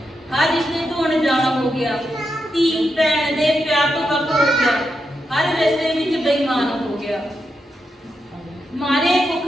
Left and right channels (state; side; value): normal; both; correlation 0.85